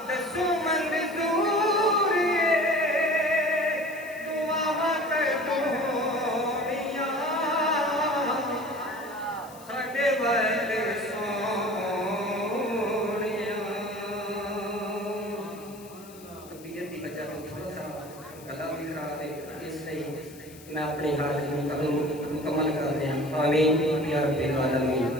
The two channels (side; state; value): left; noise; hiss, 21 dB below the sound